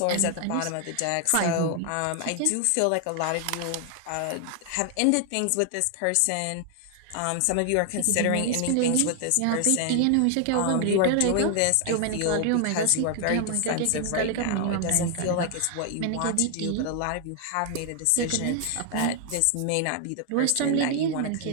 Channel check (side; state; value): both; different; correlation 0.00